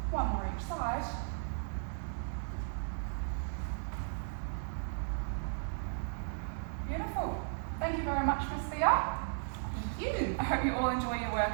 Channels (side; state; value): left; silent; digital silence